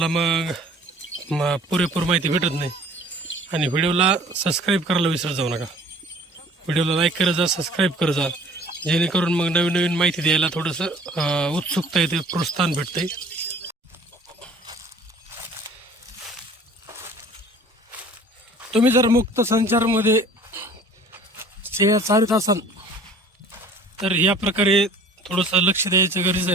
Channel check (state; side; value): normal; both; correlation 0.50